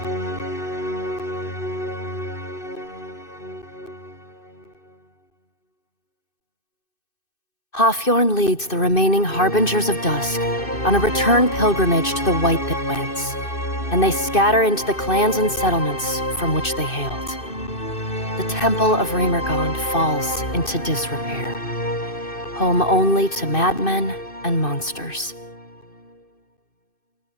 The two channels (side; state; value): right; late; 2.6 ms